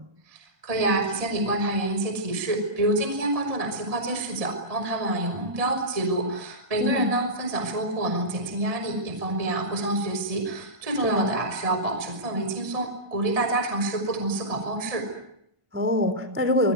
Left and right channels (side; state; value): left; late; 1.7 ms